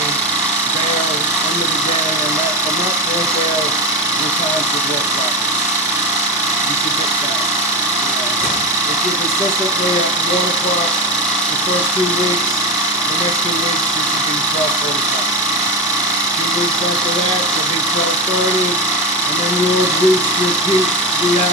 there under the gang, and that from that point there, your time should work out. You should get that. If you're consistently at 1 o'clock the first 2 weeks, the next 2 weeks you should be 12:45. 2 weeks after that, you'll be 12:30, and then you'll reach your peak 3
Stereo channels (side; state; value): both; normal; correlation 0.16